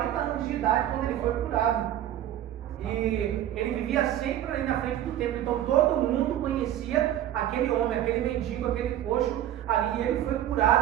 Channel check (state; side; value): quieter; left; 12.1 dB